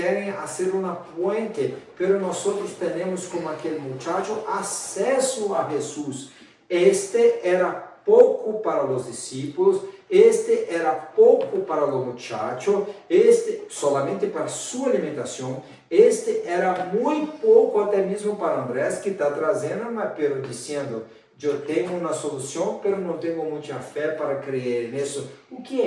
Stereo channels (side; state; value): both; identical; correlation 1.00